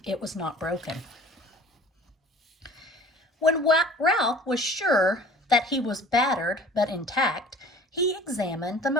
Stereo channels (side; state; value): both; normal; correlation 0.47